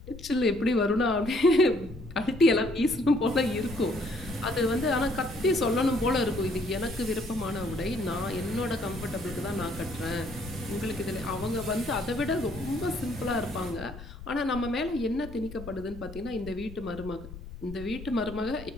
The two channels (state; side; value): noise; left; rumble, 14 dB below the sound